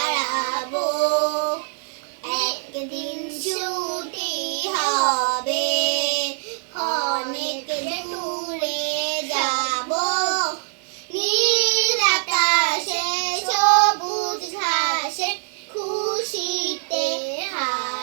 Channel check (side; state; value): left; silent; 63 dB below the other